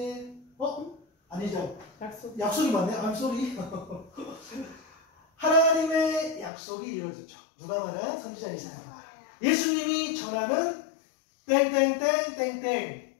아니죠. 약속. 약속이 맞네. I'm sorry. 하나님의 약속이 이루어졌죠. 누가 말한? 선지자 이사야. 예수님이 전하는 땡땡땡땡땡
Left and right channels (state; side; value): drops out; right; at 6.5 s